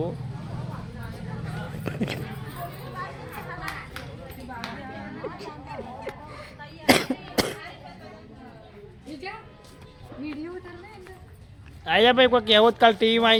આયા ભાઈ કોઈ કહેવત કાલ ટીવીમાં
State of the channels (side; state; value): both; identical; correlation 1.00